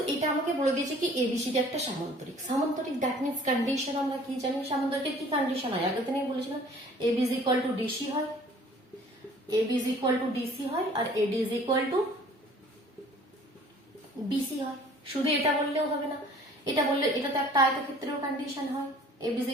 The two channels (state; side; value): normal; both; correlation 0.52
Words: এটা আমাকে বলে দিয়েছে কি এবিসিডি একটা সামান্তরিক। সামান্তরিক দ্যাট মিন্স কন্ডিশন আমরা কি জানি, সামান্তরিকের কি কন্ডিশন হয় আগের দিনে বলেছিলাম, AB is equal to DC হয়, AB is equal to DC হয়, আর AD is equal to BC হয়। শুধু এটা বললেও হবে না, এটা বললে এটা তো একটা আয়তক্ষেত্রের কন্ডিশন হয়, AB is